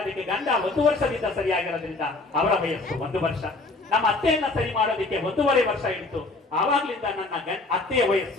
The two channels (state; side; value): quieter; right; 3.3 dB